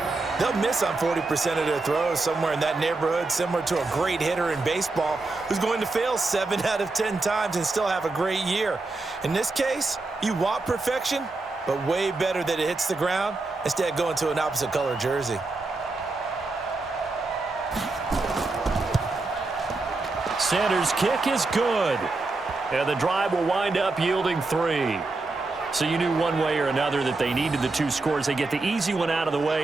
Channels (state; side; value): quieter; left; 3.4 dB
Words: they'll miss on 40% of their throws, somewhere in that neighborhood, similar to a great hitter in baseball who's going to fail 7 out of 10 times and still have a great year. In this case, you want perfection, but way better that it hits the ground instead of going to an opposite color jersey. Sanders' kick is good, and the drive will wind up yielding 3. So you knew one way or another that they needed the 2 scores. They get the easy one out of the